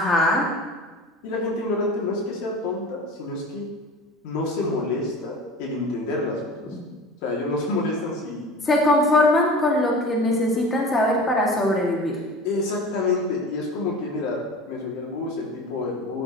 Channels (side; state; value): both; normal; correlation 0.37